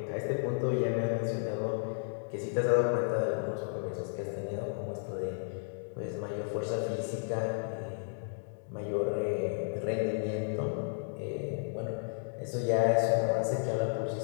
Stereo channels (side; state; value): right; silent; digital silence